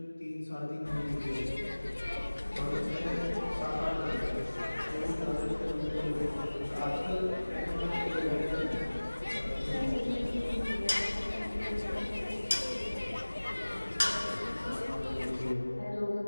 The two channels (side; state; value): both; inverted; correlation -1.00